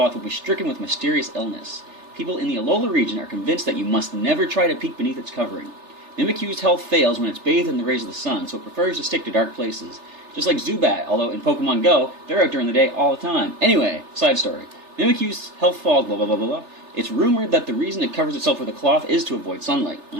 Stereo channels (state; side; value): late; left; 3.3 ms